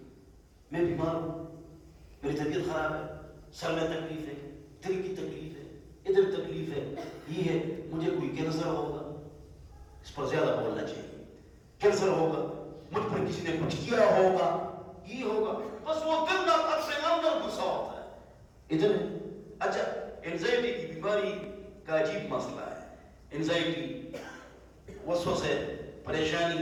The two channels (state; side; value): identical; both; correlation 1.00